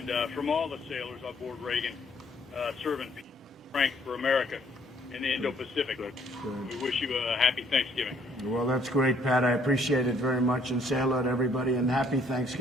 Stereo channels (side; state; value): both; normal; correlation 0.64